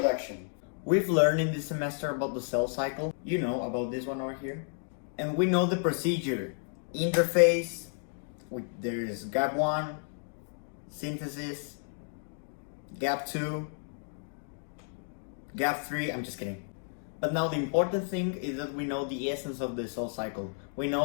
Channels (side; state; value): right; silent; 57 dB below the other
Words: We've learned in this semester about the cell cycle. You know about this one over here. And we know the procedure. Interphase, there is gap 1, synthesis, gap 2, gap 3, I'm just kidding. But now the important thing is that we know the essence of the cell cycle. We